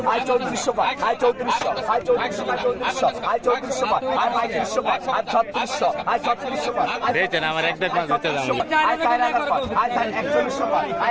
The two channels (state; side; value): identical; both; correlation 1.00